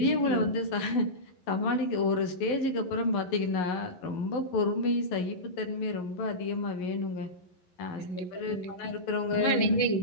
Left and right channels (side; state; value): right; late; 11 ms